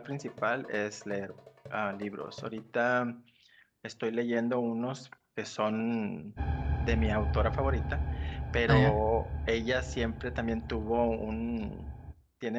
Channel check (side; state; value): both; identical; correlation 1.00